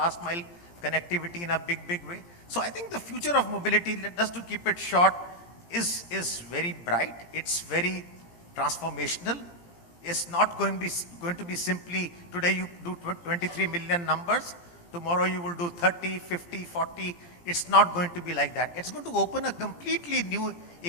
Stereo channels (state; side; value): late; right; 17 ms